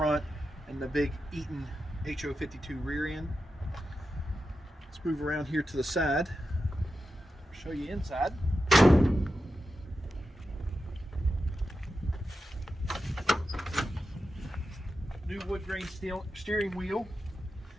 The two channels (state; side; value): normal; both; correlation 0.90